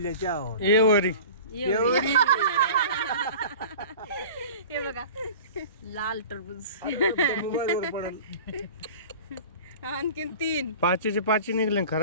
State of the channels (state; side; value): inverted; both; correlation -0.39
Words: आहोत. एवरी एवढी हे बघा लाल टरबूज. मोबाईलवर पडल. आणखीन 3 पाचीचे 5 निघले